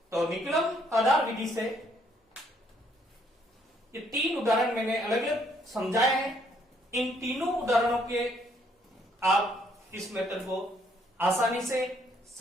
तो निकलम आधार विधि से ये 3 उदाहरण मैंने अलग अलग समझाए हैं। इन तीनों उदाहरणों के आप इस मेथड को आसानी से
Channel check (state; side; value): normal; both; correlation 0.68